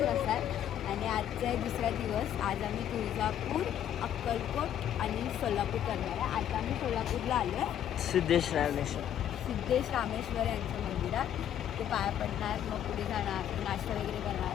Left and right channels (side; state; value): right; quieter; 10.4 dB